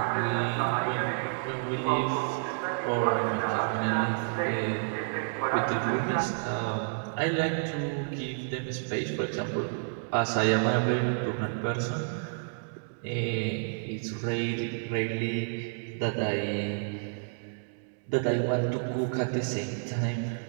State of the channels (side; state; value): left; silent; digital silence